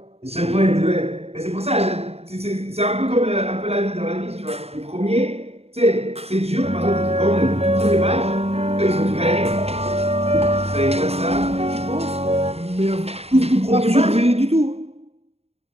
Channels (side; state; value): left; late; 0.30 ms